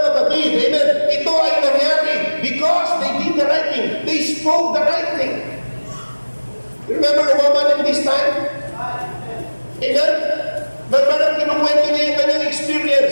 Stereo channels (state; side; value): inverted; both; correlation -1.00